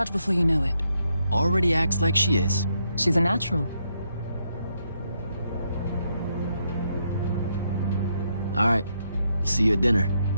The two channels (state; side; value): inverted; both; correlation -0.78